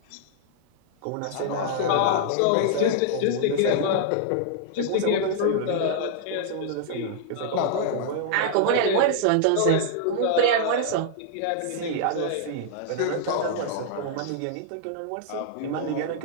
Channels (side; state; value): both; different; correlation -0.01